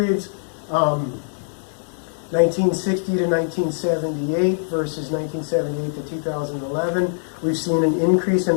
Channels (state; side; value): silent; right; 60 dB below the other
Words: 1960 to 1978 versus 1978 to 2011, we've seen an increase